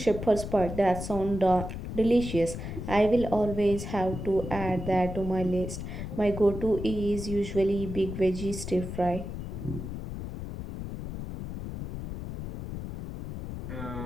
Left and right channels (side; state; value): left; noise; rumble, 7 dB below the sound